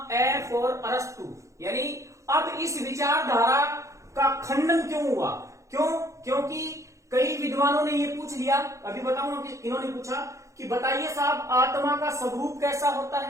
ए फॉर अरस्तु। यानी अब इस विचारधारा का खंडन क्यों हुआ? क्योंकि कई विद्वानों ने ये पूछ लिया, अभी बताऊंगा कि इन्होंने पूछा कि बताइए साहब आत्मा का स्वरूप कैसा होता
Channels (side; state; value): left; late; 0.15 ms